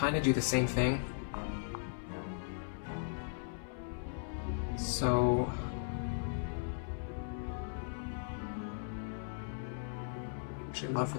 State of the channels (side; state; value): right; silent; 53 dB below the other